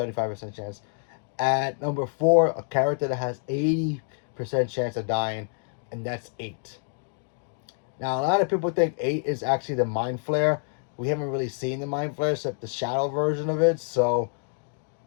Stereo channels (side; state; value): right; silent; 60 dB below the other